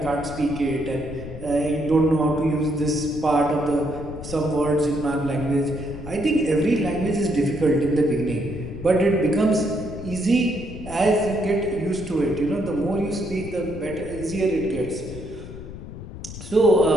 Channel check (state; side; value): noise; left; rumble, 11 dB below the sound